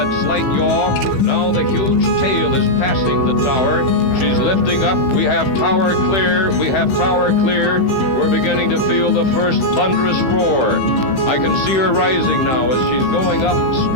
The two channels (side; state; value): right; late; 15 ms